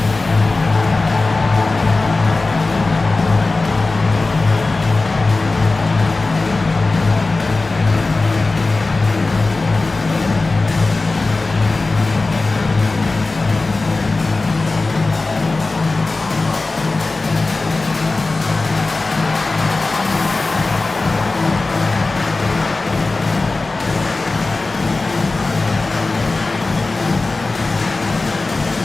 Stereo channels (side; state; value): right; quieter; 3.4 dB